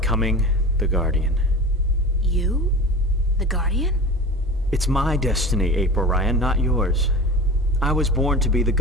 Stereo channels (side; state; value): both; normal; correlation 0.33